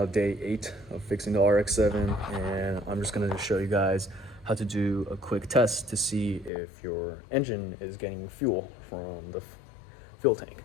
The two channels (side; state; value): right; drops out; at 6.5 s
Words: day 8 of fixing the RX7, and I'm just going to show you guys how to do a quick test to see if your engine is getting fuel from the fuel tank.